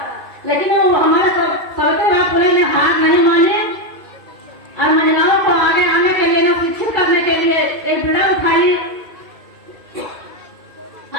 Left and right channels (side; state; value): left; late; 2.6 ms